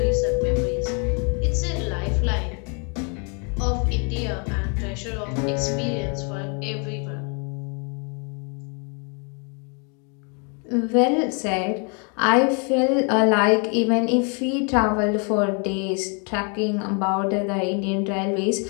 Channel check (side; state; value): right; quieter; 36.9 dB